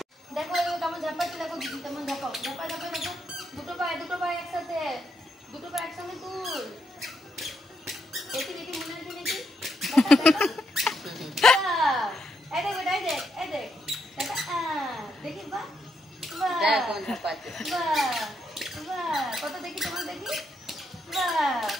দেখো ও কেমন ঝাপাচ্ছে, দেখো দিদি কেমন ঝাপাও। ঝাপাও ঝাপাও ঝাপাও। দুটো পায়ে একসাথে। দুটো পায়ে একসঙ্গে তুল। দেখি দেখি মনে হচ্ছে দেখি। এই দেখ বেটা, এই দেখ। দেখা দেখি বাহ। বাহ। দেখো ঝাপাচ্ছে। বাহ। বাহ। কত দেখি তোমার দেখি। বাহ।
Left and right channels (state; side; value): normal; both; correlation 0.78